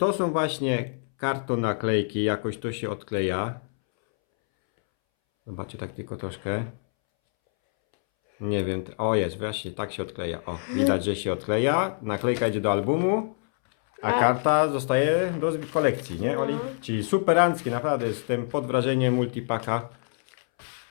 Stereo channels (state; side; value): silent; right; 61 dB below the other